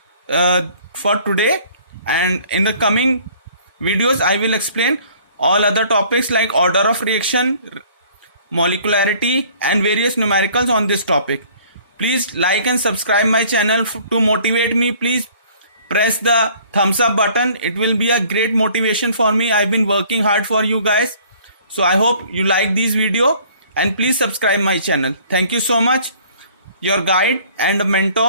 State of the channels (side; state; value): both; inverted; correlation -0.55